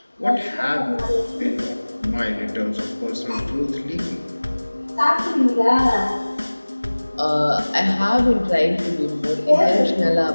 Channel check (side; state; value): both; inverted; correlation -1.00